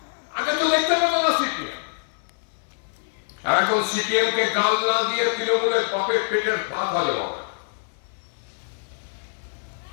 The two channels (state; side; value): silent; right; 59 dB below the other